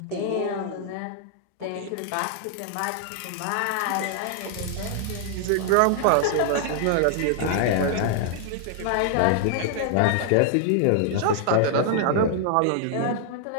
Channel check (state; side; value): different; both; correlation 0.00